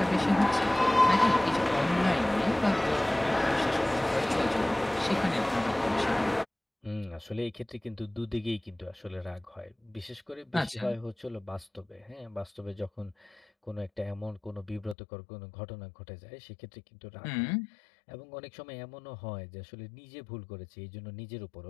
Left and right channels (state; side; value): drops out; right; at 15.0 s